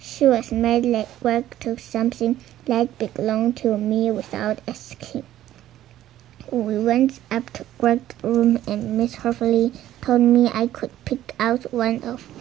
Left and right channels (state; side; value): quieter; left; 13.1 dB